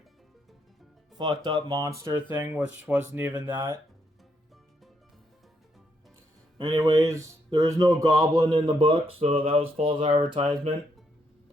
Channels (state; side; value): normal; both; correlation 0.76